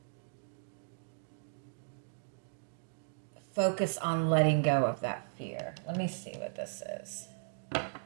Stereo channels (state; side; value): silent; left; digital silence